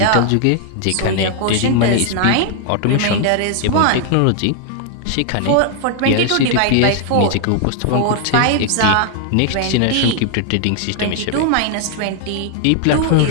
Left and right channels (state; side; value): different; both; correlation 0.00